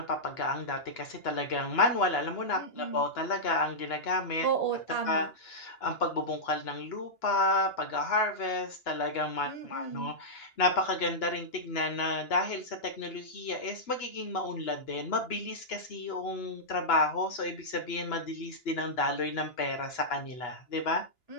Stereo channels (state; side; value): late; right; 2.9 ms